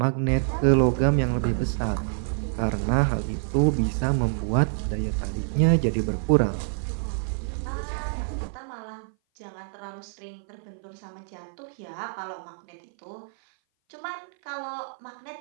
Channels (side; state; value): left; silent; 57 dB below the other